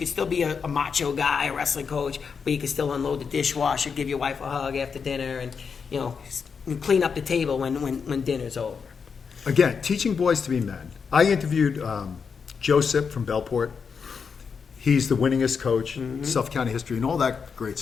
still be a macho guy, a wrestling coach, but you can still unload the dishwasher, give your wife a hug after dinner, and, you know, clean up the table when dinner's over. Again, teaching boys to be men. I interviewed Joseph from Bellport. He's the winningest coach in Suffolk County history and all that great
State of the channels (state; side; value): quieter; right; 5.9 dB